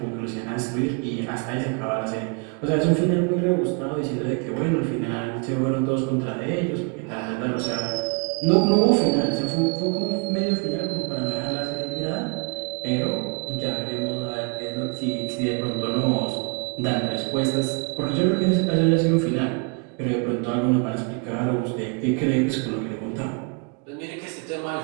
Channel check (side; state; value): left; quieter; 35.2 dB